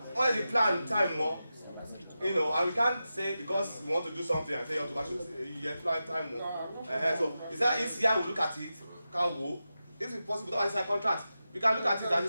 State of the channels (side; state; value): both; inverted; correlation -0.92